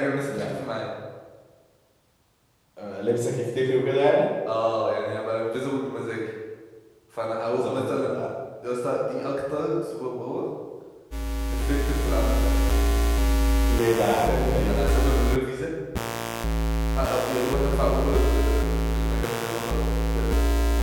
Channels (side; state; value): both; identical; correlation 1.00